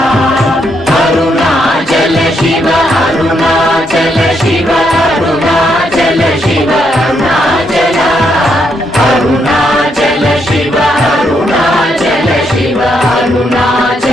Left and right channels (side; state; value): both; normal; correlation 0.77